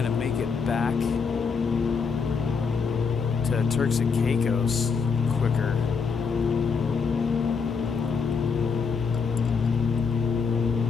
to make it back to Turks and Caicos quicker.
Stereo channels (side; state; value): right; quieter; 5.5 dB